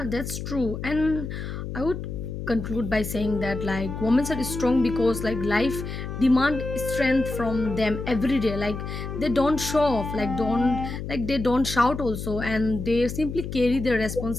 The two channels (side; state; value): left; noise; hum, 6 dB below the sound